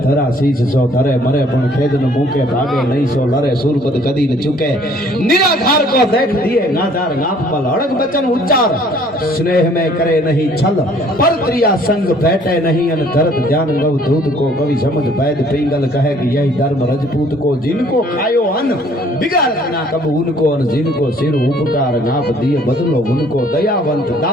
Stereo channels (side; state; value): both; normal; correlation 0.58